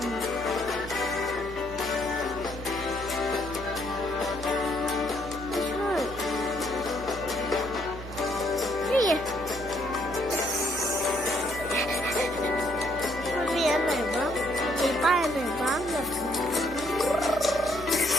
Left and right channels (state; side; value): normal; both; correlation 0.69